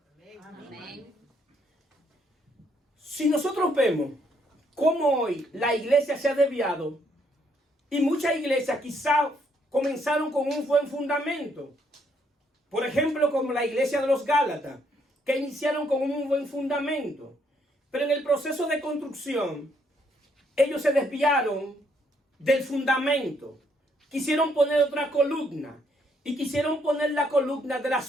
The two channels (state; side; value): normal; both; correlation 0.71